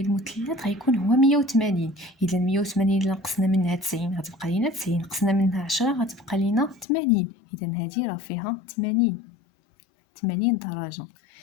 المثلث غيكون هو 180. اذا 180 الا نقصنا منها 90 غتبقى لينا 90، نقصنا منها 10 غتبقى لينا 80. اذا هذه راه فيها 80 درجه.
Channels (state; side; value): drops out; right; at 6.9 s